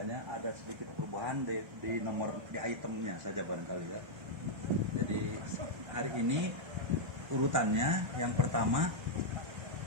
ada sedikit perubahan di nomor di itemnya saja barangkali ya. Jadi hari ini urutannya yang pertama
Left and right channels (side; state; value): left; late; 1.3 ms